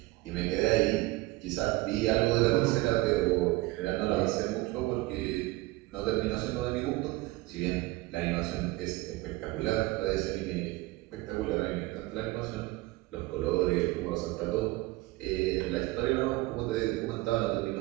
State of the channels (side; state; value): left; quieter; 20.1 dB